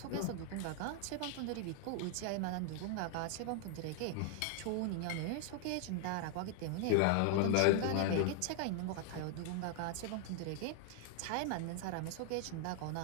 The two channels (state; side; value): different; both; correlation 0.00